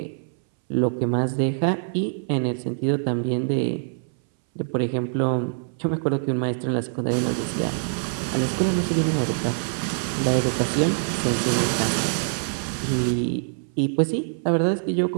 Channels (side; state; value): left; silent; 61 dB below the other